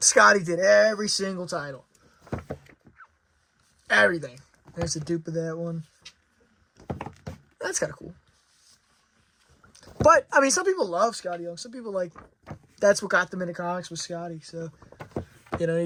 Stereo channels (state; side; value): identical; both; correlation 1.00